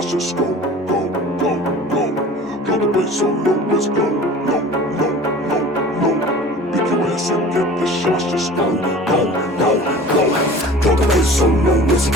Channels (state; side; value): normal; both; correlation 0.42